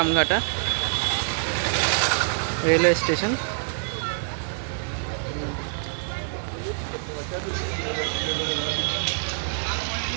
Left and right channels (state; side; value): silent; left; digital silence